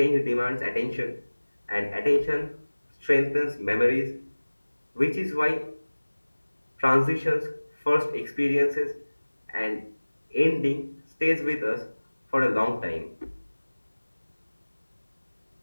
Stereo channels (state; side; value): inverted; both; correlation -1.00